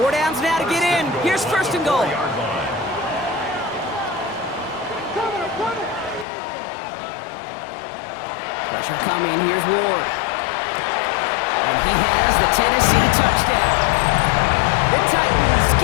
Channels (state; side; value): drops out; right; at 6.2 s